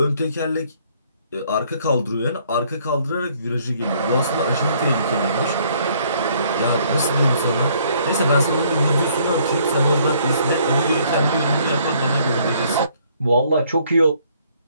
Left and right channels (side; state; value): both; inverted; correlation -0.64